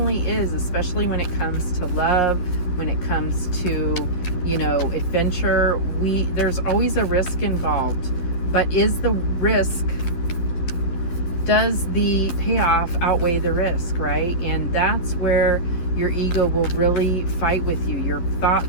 is, especially when it comes to love, when it comes to, adventure. There's always a risk involved. But is the risk, does the payoff outweigh the risk, right? And that's where your ego will really fight with you. Your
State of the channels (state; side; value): late; right; 11 ms